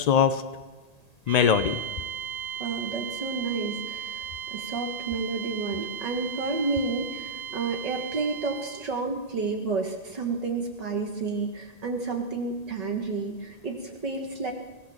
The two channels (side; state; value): right; late; 1.8 ms